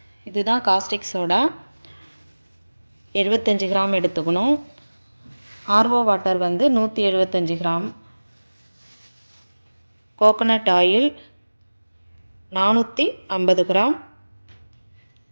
இதுதான். காஸ்டிக் சோடா 75 கிராம் எடுத்துக்கணும். ஆர்ஓ வாட்டர் வந்து 175 gram. Coconut oil 450 gram.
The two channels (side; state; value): both; inverted; correlation -1.00